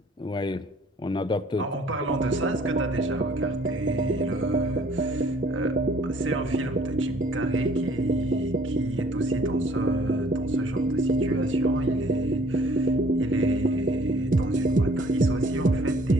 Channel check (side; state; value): both; normal; correlation 0.57